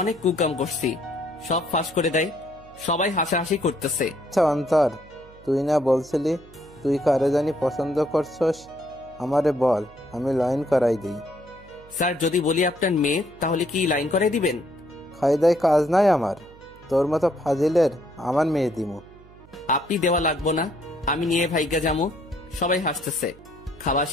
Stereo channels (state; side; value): noise; right; hum, 23 dB below the sound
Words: কুকাম করছি, সব ফাঁস করে দেয়, সবাই হাসাহাসি করতেছে। আচ্ছা অন্তর, তুই না বলছিলি তুই কারে জানি পছন্দ করছস? আমারে বল, আমি লাইন করাই দিই। স্যার যদি বলি আপনার মেয়ে, তাহলে কি লাইন করাই দিবেন? খাইদাই কাজ নাই আমার, তোর মতো ফাজিলের আমার মেয়ে দিমু। আপনি দেওয়া লাগবো না, আমি নিয়ে ভাইগা যামু। সবাই হাসতেছে। খাওয়া